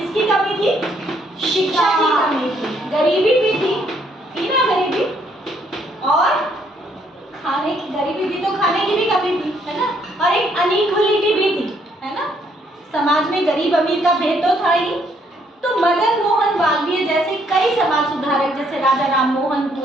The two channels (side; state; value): both; normal; correlation 0.69